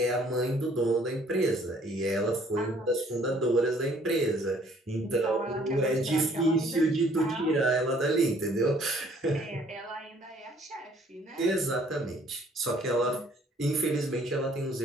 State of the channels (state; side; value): normal; both; correlation 0.60